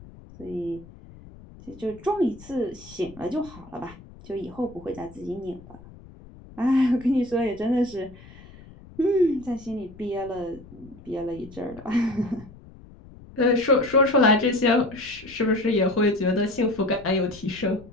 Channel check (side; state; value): left; noise; rumble, 20 dB below the sound